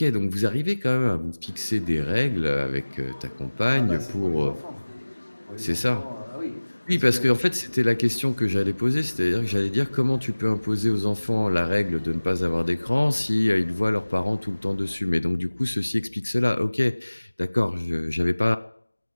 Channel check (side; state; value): both; inverted; correlation -1.00